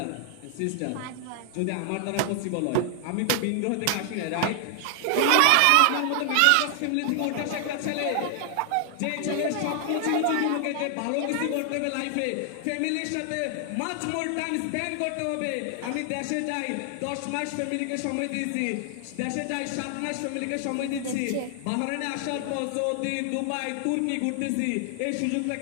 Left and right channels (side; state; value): both; different; correlation 0.00